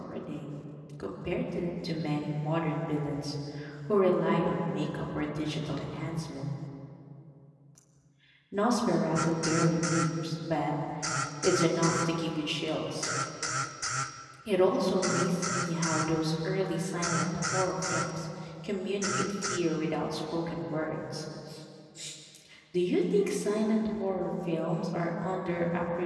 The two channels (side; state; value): both; identical; correlation 1.00